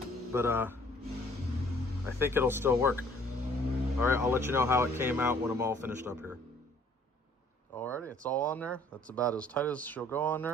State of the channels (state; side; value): normal; both; correlation 0.58